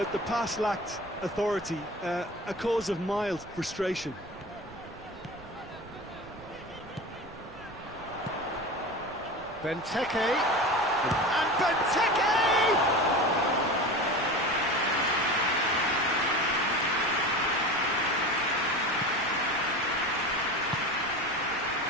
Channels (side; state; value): right; noise; rumble, 20 dB below the sound